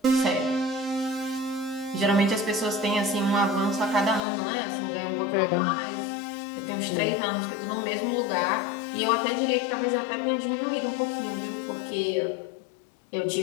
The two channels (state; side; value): drops out; right; at 4.2 s